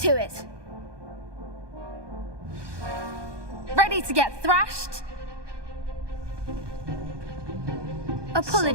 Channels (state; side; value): late; left; 1.2 ms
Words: it. Ready to get thrashed?